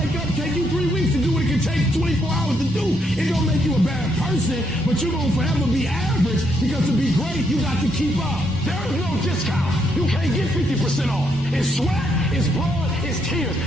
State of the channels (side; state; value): both; normal; correlation 0.75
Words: up, take you 3 weeks to do what it can take 24 hours to do. It don't make you a bad person, but you're gonna forever be average because to be great, you got to keep up. There is no discount. You can't get 50% off. It's sweat, it's blood, it's tears.